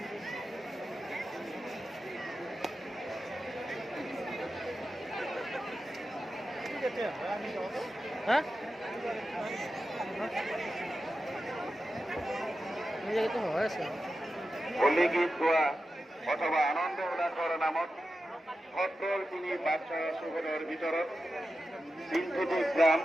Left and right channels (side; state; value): both; normal; correlation 0.91